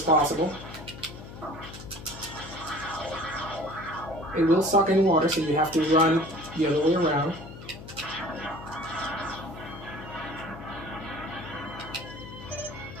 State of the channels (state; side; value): noise; left; hum, 14 dB below the sound